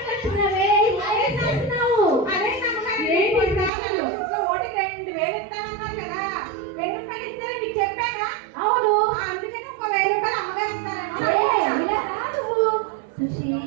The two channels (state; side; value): drops out; left; at 3.7 s